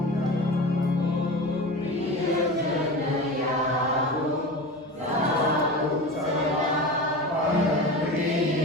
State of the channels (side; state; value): both; normal; correlation 0.30